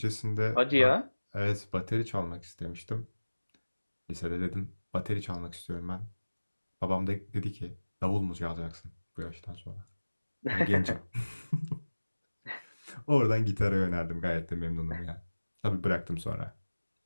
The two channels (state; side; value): inverted; both; correlation -1.00